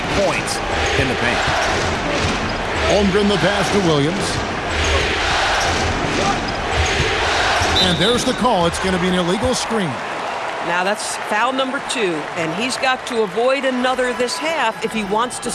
points in the paint. Holmgren the pass to Williams. And there's the call. It's going to be an illegal screen. Now that's foul number 2, and he's got to avoid another this half if he wants to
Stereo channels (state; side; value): identical; both; correlation 1.00